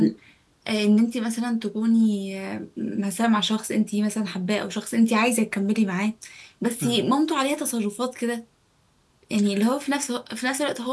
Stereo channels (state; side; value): identical; both; correlation 1.00